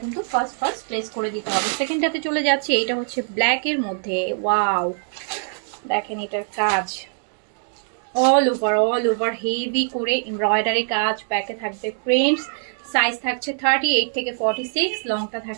কিন্তু ফার্স্ট প্লেস করে দিতে হবে। সেকেন্ডটাতে চলে যাচ্ছে, এইটা হচ্ছে ব্ল্যাকের মধ্যে। ওয়াও, দেখেন এটার কাজ অল ওভার হেভি করে এমব্রয়ডারি কাজ, ব্যাকে থাকবে প্রিন্টস। সাইজ থাকছে 38 থেকে 46, লংটা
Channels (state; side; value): silent; left; 64 dB below the other